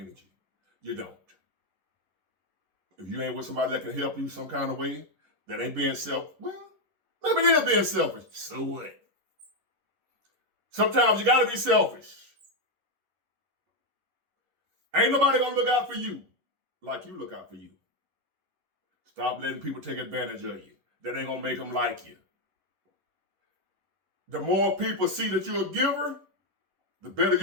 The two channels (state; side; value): late; left; 11 ms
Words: You don't. If you ain't with somebody that can help you some kind of way, that ain't being well, maybe they're being selfish. So what? Sometimes you got to be selfish. Ain't nobody going to look out for you like you look out for you. Stop letting people take advantage of you. That ain't going to make them like you. The more people see that you're a giver, the better